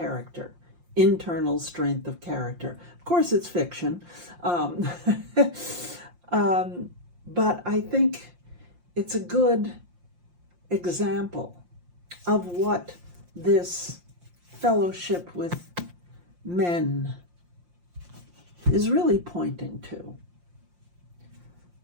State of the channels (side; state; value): left; late; 5.7 ms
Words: internal strength of character. Of course, it's fiction, but I think it's a good example of what this fellowship with men is really pointing to.